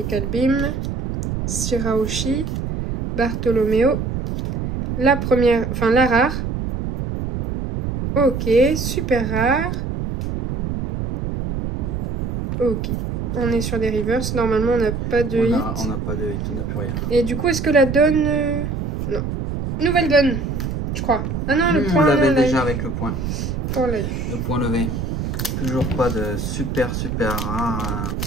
Beam. Shirahoshi. Bartholoméo. La première, enfin la rare. Ok, super rare. Ok. On est sur des reverse. Normalement, on n'a pas de hit. On n'a pas de hit, on n'a plus rien. Et du coup, est-ce que la donne... Non. Nouvelle donne, je crois. Ah non, le point... On l'avait déjà avec le point. Le point levé. Toujours pas de super rare.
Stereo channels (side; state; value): right; noise; rumble, 3 dB below the sound